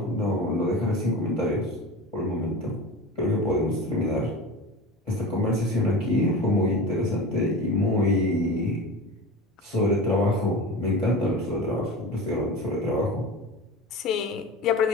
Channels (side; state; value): both; normal; correlation 0.30